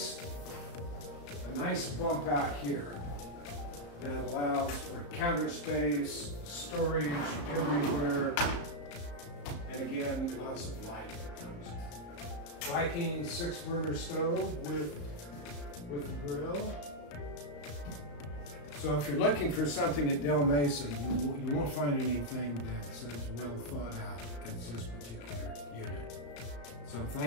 nice bump out here that allows for counter space, storage everywhere, and again, lots of light that comes in. Viking 6-burner stove with the grill. So if you're looking for something at Del Mesa, you won't find anything that's as well thought out as this particular unit. So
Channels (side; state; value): right; late; 34 ms